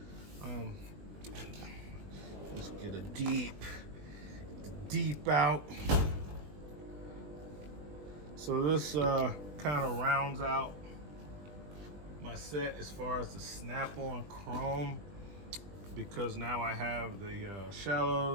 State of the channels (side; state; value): left; late; 20 ms